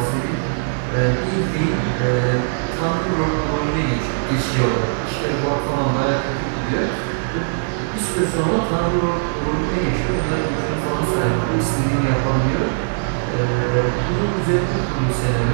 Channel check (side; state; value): left; silent; digital silence